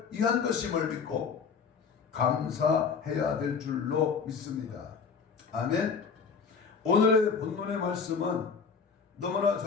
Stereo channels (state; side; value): quieter; right; 5.8 dB